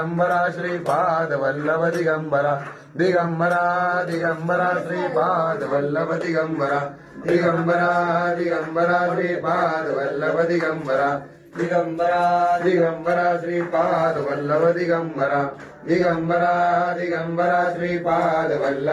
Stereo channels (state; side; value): identical; both; correlation 1.00